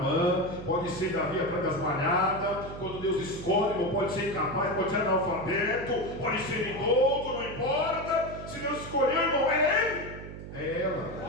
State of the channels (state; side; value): noise; right; hum, 11 dB below the sound